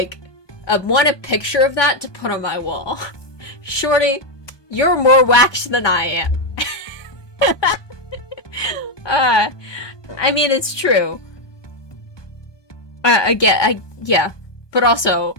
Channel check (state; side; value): late; right; 1.2 ms